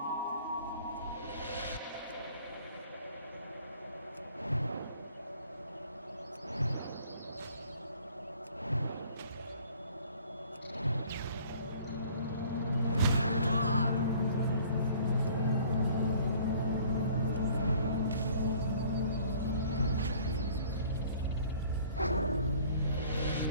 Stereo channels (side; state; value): both; inverted; correlation -0.54